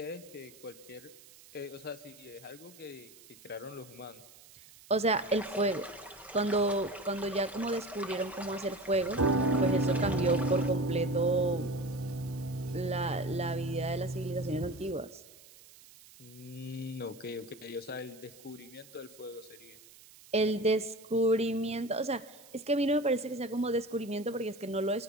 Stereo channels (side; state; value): right; noise; hiss, 22 dB below the sound